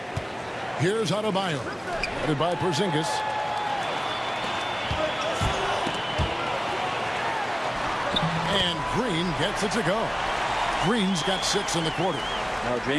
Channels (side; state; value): both; identical; correlation 1.00